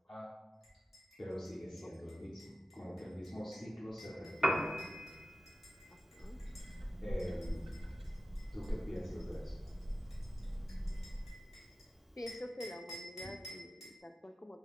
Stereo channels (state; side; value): normal; both; correlation 0.95